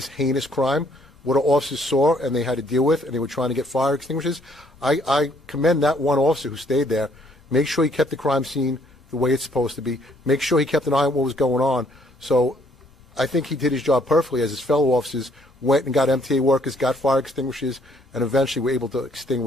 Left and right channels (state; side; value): normal; both; correlation 0.65